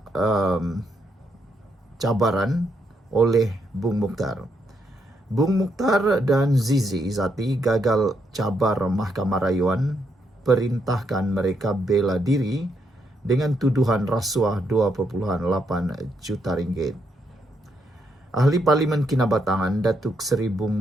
cabaran oleh Bung Mukhtar. Bung Mukhtar dan Zizi Izzati gagal cabar Mahkamah Rayuan, perintahkan mereka bela diri dengan tuduhan rasuah 2.8 juta ringgit. Ahli Parlimen Kinabatangan Datuk Seri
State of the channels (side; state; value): both; normal; correlation 0.77